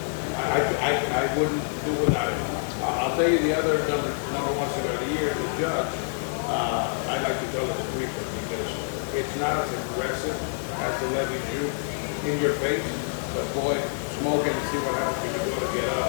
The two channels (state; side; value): silent; right; digital silence